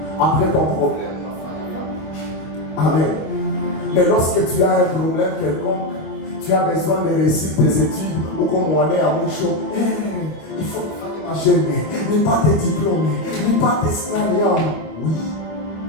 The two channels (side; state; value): right; late; 25 ms